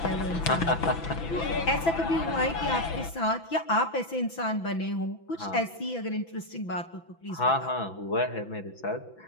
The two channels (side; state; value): right; late; 6.0 ms